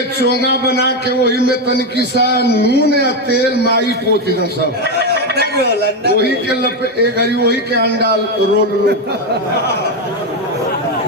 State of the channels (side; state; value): both; normal; correlation 0.09